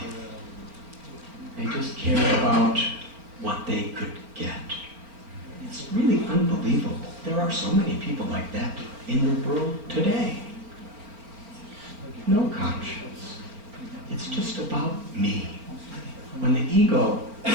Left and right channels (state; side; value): late; left; 4.4 ms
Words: They just cared about what they could get. It's really unbelievable. There are so many people like that in the world today. No conscience. It's just about me. When